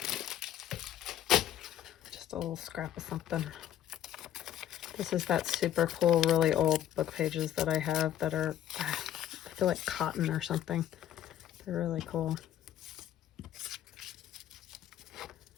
Just a little scrap of something. This is that super cool, really old book pages that I have that are, I feel like cotton or something. They're really cool.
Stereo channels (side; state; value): right; quieter; 11.3 dB